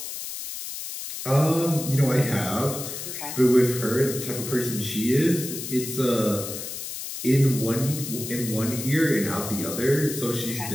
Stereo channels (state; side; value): noise; left; hiss, 7 dB below the sound